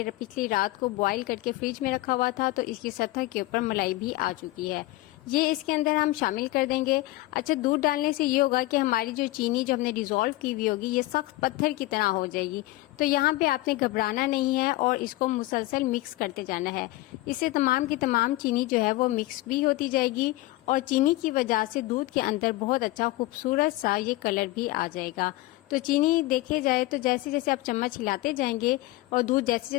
पिछली रात को बॉईल करके फ्रिज में रखा हुआ था, तो इसकी सतह के ऊपर मलाई भी आ चुकी है। ये इसके अंदर हम शामिल कर देंगे। अच्छा, दूध डालने से ये होगा कि हमारी जो चीनी जो हमने डिज़ोल्व की हुई होगी, ये सख्त पत्थर की तरह हो जाएगी। तो यहाँ पे आपने घबराना नहीं है और इसको मुसलसल मिक्स करते जाना है। इससे तमाम की तमाम चीनी जो है वो मिक्स भी होती जाएगी और चीनी की वजह से दूध के अंदर बहुत अच्छा खूबसूरत सा ये कलर भी आ जाएगा। तो चीनी देखे जाए तो जैसे जैसे आप चम्मच हिलाते जाएंगे और दूध जैसे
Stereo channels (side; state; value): right; quieter; 18.7 dB